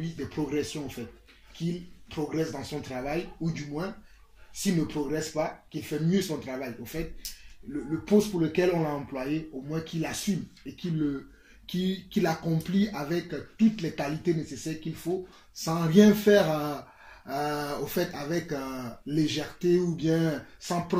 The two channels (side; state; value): both; identical; correlation 1.00